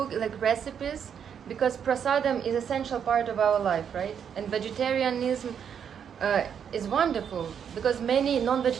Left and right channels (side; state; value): left; quieter; 7.9 dB